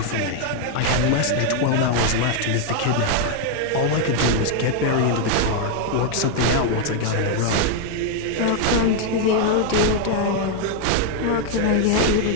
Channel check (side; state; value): both; different; correlation 0.00